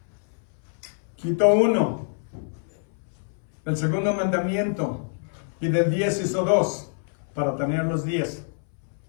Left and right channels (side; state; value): right; silent; 60 dB below the other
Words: quitó 1, el segundo mandamiento, y del 10 hizo 2, para tener los 10.